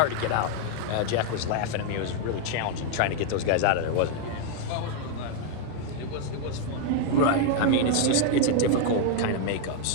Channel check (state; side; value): different; both; correlation 0.00